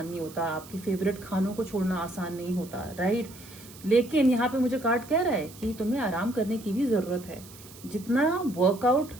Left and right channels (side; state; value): right; noise; hiss, 19 dB below the sound